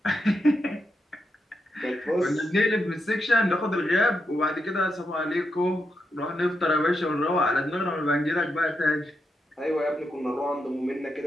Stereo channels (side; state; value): both; normal; correlation 0.84